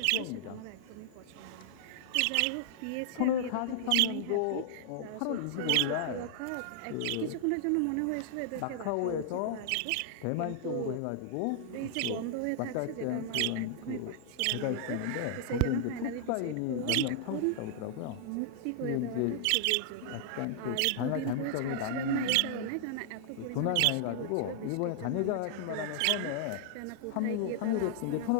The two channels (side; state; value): both; different; correlation -0.01